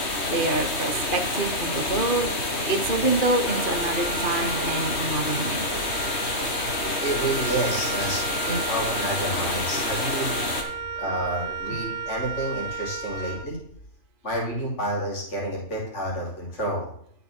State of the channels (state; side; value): late; right; 3.2 ms